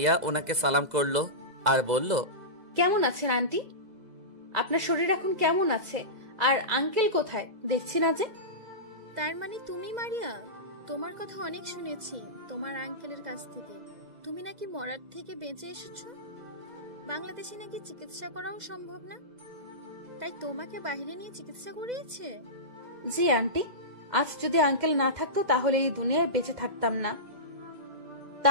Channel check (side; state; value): left; late; 2.0 ms